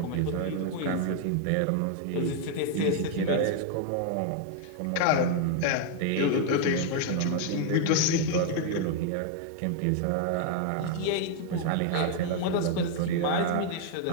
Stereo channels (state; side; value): different; both; correlation 0.00